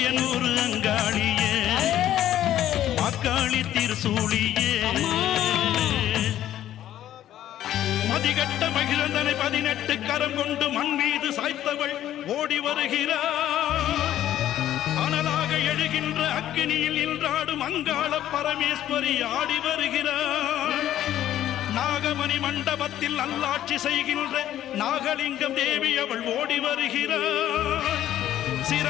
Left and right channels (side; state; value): right; quieter; 12.2 dB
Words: அங்காளியே அக்காளி திருசூடியே மதிகட்ட மகிழந்தனை 18 கரம் கொண்டு மண் மீது சாய்த்தவள் ஓடி வருகிறாள் அனலாக எழுகின்ற அக்கினியில் நின்றாடும் அங்காள பரமேஸ்வரி ஆடி வருகிறாள் நாகமணி மண்டபத்தில் நல்லாட்சி செய்கின்ற நாகலிங்கம் தேவி அவள் ஓடி வருகிறாள்